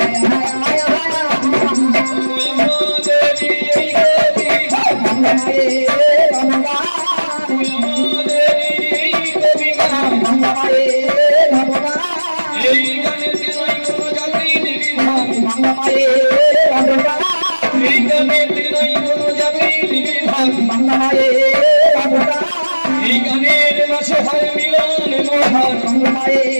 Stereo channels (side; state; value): both; inverted; correlation -1.00